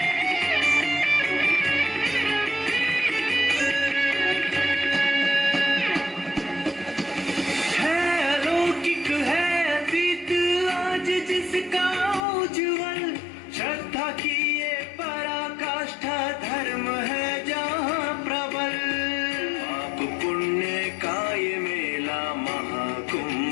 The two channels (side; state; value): right; drops out; at 12.2 s